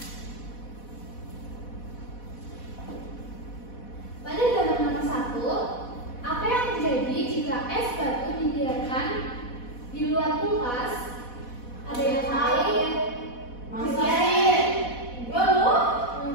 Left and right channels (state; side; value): late; right; 4.1 ms